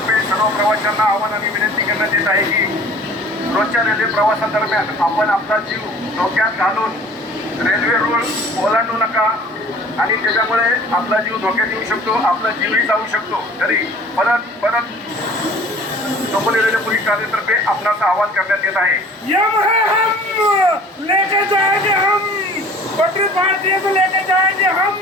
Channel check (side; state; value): both; normal; correlation 0.48